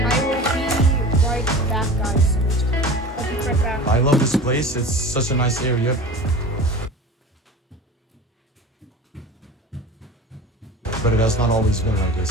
Back, guys. I'll be right back. I love this place. It's such a nice area. But it has not always been like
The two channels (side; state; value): both; normal; correlation 0.36